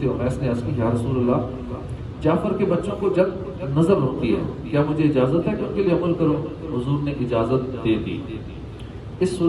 امیس نے عرض کی یا رسول اللہ، جعفر کے بچوں کو جب نظر ہوتی ہے کیا مجھے اجازت ہے کہ ان کے لیے عمل کروں؟ حضور نے اجازت دے دی۔ اس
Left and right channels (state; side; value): identical; both; correlation 1.00